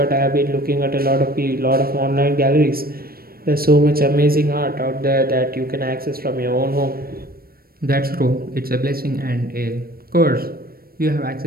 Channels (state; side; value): late; left; 0.44 ms